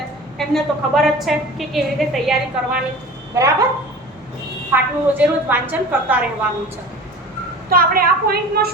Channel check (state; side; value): normal; both; correlation 0.38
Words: એમને તો ખબર જ છે કે કેવી રીતે તૈયારી કરવાની. બરાબર, પાઠનું રોજે રોજ વાંચન કરતા રહેવાનું છે. તો આપણે આ પોઈન્ટમાં